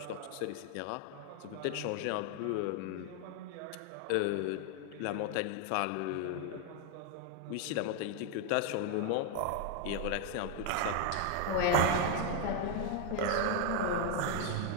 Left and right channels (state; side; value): different; both; correlation 0.01